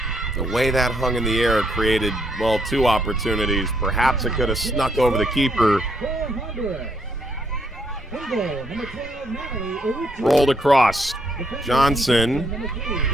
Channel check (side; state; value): both; normal; correlation 0.73